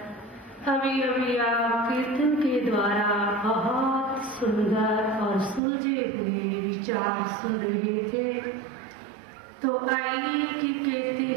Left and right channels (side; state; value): left; drops out; at 5.6 s